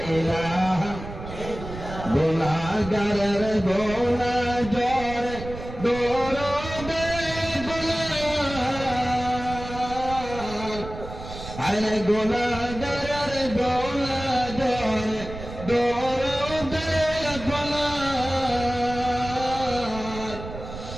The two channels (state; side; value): noise; right; rumble, 11 dB below the sound